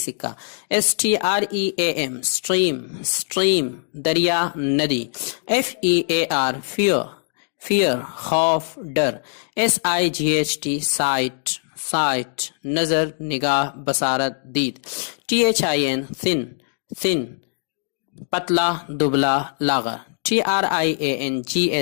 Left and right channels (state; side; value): silent; right; digital silence